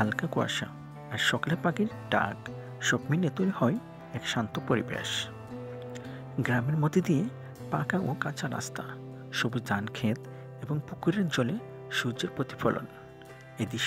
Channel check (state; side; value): identical; both; correlation 1.00